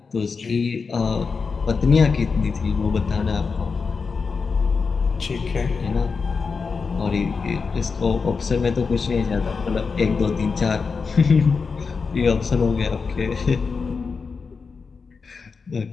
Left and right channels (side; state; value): right; quieter; 5.0 dB